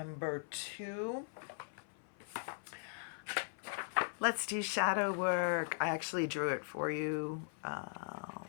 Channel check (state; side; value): silent; right; 51 dB below the other